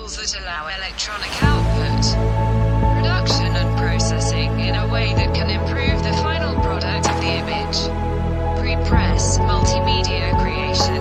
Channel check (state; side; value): identical; both; correlation 1.00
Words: that allow electronic output, production and processing in a way that can improve the final product of the image. Pre-press, multimedia creation,